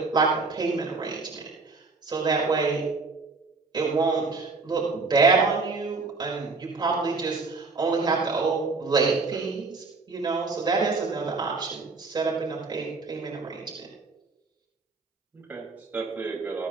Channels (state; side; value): quieter; left; 4.0 dB